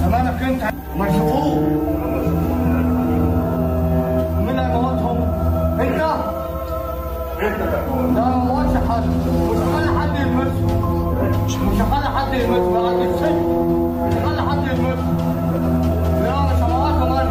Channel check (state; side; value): identical; both; correlation 1.00